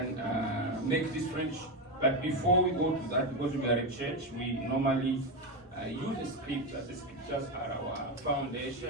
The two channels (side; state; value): both; normal; correlation 0.12